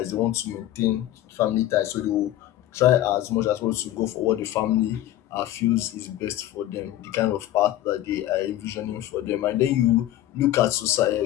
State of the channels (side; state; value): right; quieter; 13.6 dB